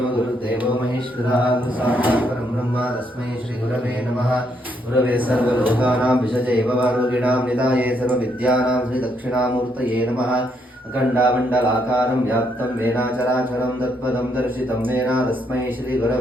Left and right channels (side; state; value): both; normal; correlation 0.75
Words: गुरुदेवो महेश्वरः गुरुसाक्षात् परं ब्रह्म तस्मै श्रीगुरवे नमः। गुरवे सर्वलोकानां विषजे भवारोगिणां निधाये सर्वविद्यानां श्रीदक्षिणामूर्तये नमः। अखण्डामण्डलाकारं व्याप्तं येन चराचरं तत्पदं दर्शितं येन तस्मै